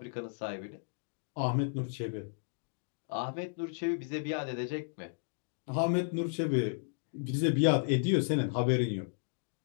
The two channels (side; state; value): right; silent; digital silence